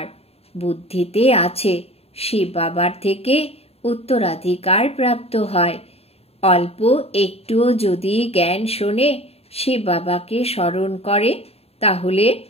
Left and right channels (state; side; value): late; right; 0.29 ms